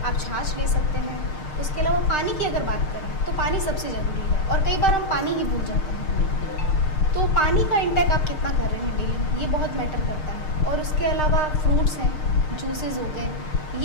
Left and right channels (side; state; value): right; late; 6.5 ms